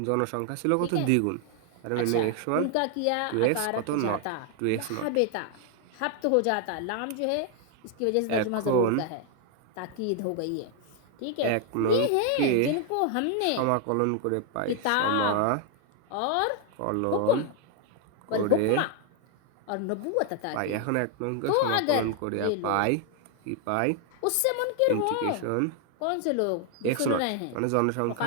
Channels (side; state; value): both; different; correlation 0.00